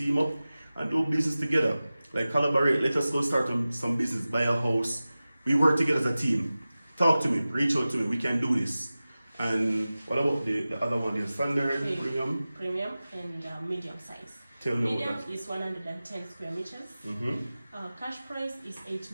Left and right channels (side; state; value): both; inverted; correlation -0.96